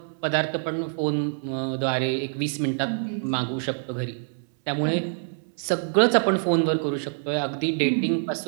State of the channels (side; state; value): left; silent; 61 dB below the other